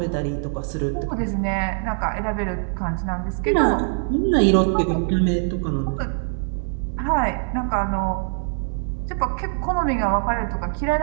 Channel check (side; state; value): left; silent; digital silence